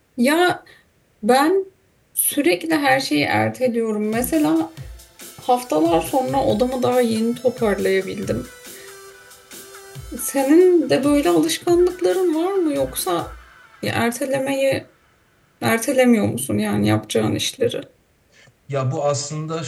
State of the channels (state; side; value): identical; both; correlation 1.00